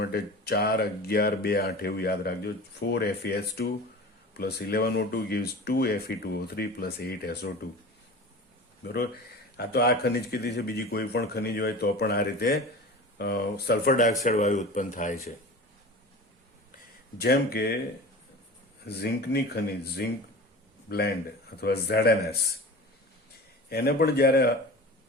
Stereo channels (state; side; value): normal; both; correlation 0.35